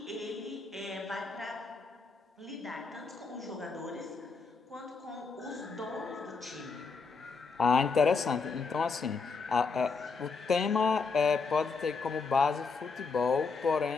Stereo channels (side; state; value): right; quieter; 4.7 dB